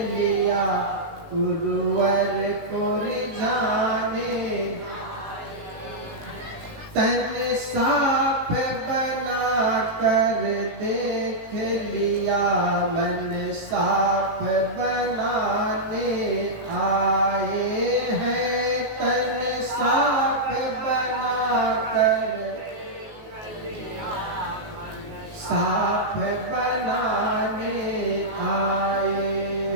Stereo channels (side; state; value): left; late; 18 ms